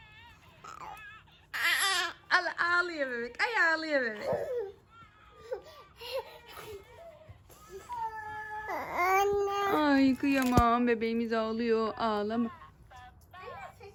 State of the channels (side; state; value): both; identical; correlation 1.00